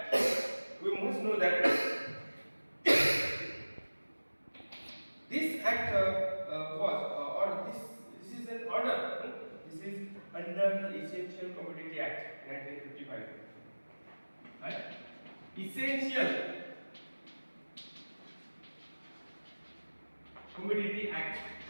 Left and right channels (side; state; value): both; inverted; correlation -1.00